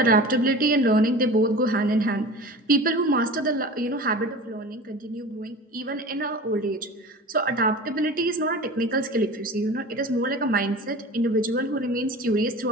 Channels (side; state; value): both; normal; correlation 0.36